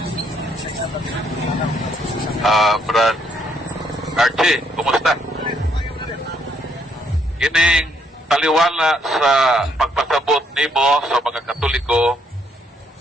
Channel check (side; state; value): both; normal; correlation 0.70